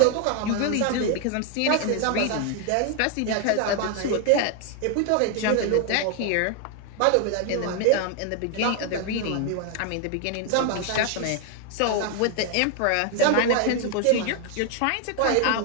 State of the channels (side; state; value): both; different; correlation 0.00